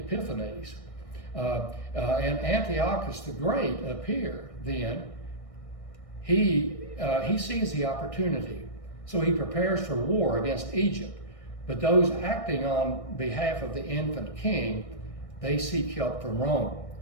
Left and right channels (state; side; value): late; right; 1.6 ms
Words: And Antiochus the Great up here, then, he sees the opportunity. So he prepares for war against Egypt. But those acting on behalf of the infant king, they seek help from Rome.